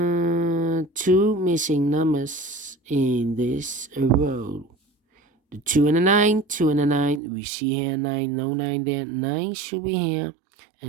missing numbers in this row. The 2 and a 9, 2 and a 9. We see here 9, no 9 there. 9 should be here.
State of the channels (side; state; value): left; drops out; at 7.2 s